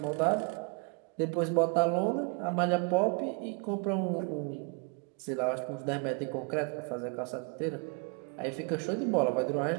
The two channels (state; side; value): quieter; left; 36.4 dB